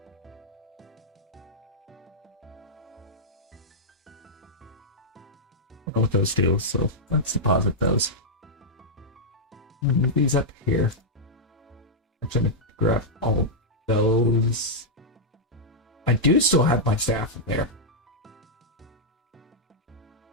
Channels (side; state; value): both; normal; correlation -0.07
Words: don't know what those do, so let's deposit those. Move these up here. I'm trying to grab all of those. I do still have my staff in there.